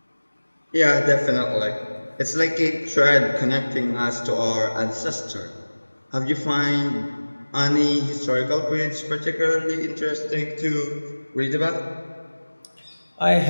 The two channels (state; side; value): inverted; both; correlation -1.00